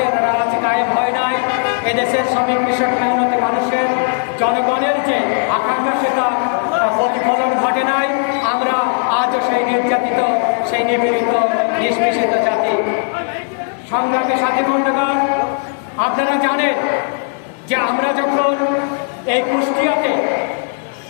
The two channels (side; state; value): right; silent; 57 dB below the other